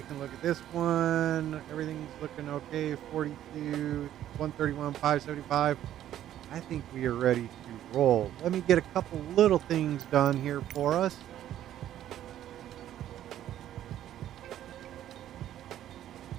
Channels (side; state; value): left; quieter; 11.8 dB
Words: look at this one. Everything's looking okay. 42, 131, 575. I think we are ready to roll. Let me get a couple little things done here for us.